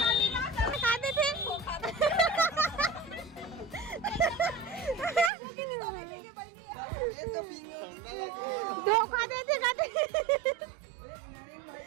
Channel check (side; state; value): left; drops out; at 5.3 s